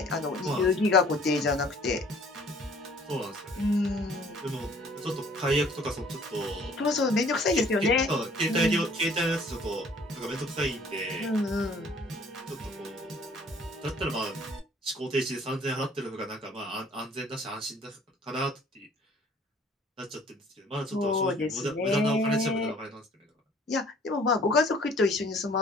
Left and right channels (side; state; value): both; normal; correlation 0.55